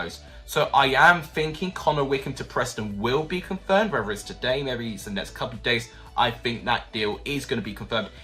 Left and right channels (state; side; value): identical; both; correlation 1.00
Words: So I am thinking Connor Wickham to Preston will be confirmed, whether it's today, maybe it's the next couple of days. I think that deal is going to be confirmed.